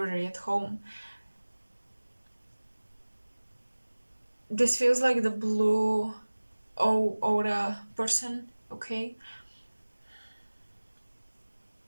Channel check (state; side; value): inverted; both; correlation -1.00